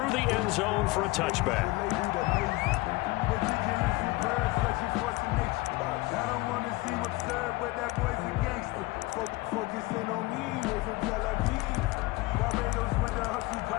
the end zone for a touchback.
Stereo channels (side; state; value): right; quieter; 21.3 dB